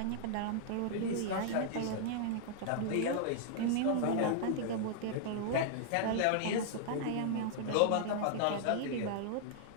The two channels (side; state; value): both; different; correlation -0.01